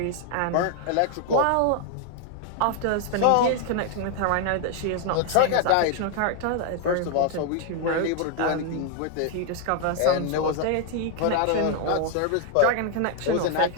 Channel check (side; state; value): both; different; correlation 0.00